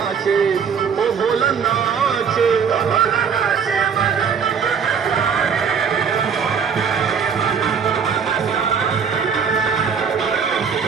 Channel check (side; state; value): left; quieter; 6.6 dB